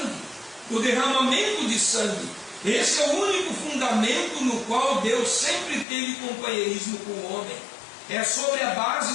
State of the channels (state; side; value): drops out; right; at 5.9 s